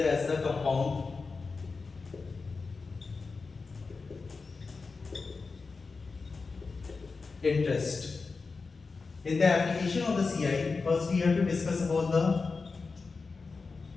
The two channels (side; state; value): right; quieter; 4.4 dB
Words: as the compound interest. In the application of the CI, first we have to discuss about the